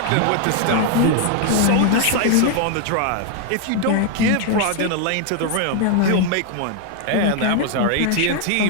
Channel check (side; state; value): both; different; correlation 0.00